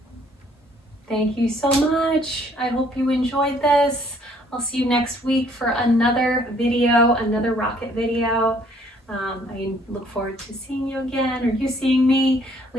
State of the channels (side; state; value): both; normal; correlation 0.62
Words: Thank you so much. I hope you enjoyed this. I'll see you next week for another video, another rocket video. I look forward to seeing you again, or you seeing me.